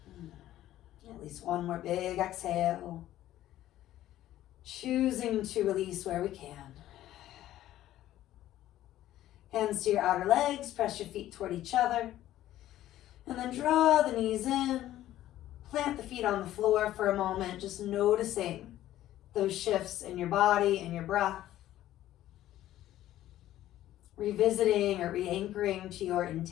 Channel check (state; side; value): quieter; right; 13.6 dB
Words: At least one more big exhale. Choosing to release where we can. Hands to your outer legs, press your feet toward each other. And then draw the knees in. Plant the feet on the floor for a moment, just noticing those shifts in your body and your breath. Revisiting or re-anchoring to your